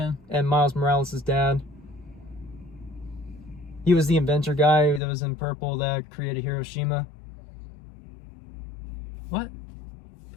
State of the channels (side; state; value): right; drops out; at 5.0 s